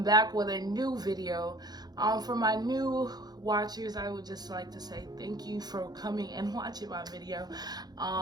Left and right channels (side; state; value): left; late; 0.19 ms